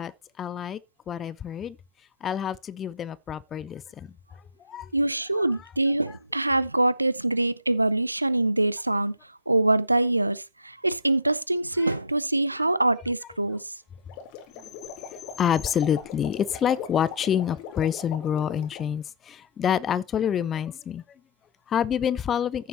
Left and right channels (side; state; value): both; inverted; correlation -0.36